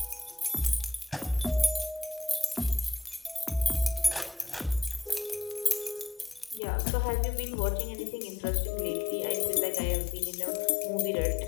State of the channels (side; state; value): right; drops out; at 6.6 s